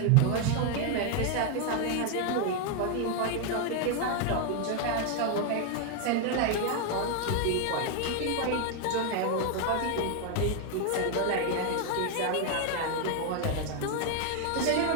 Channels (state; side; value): different; both; correlation 0.01